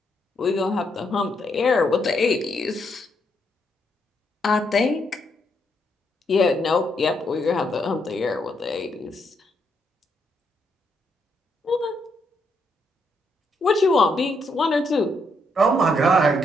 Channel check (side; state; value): both; normal; correlation 0.77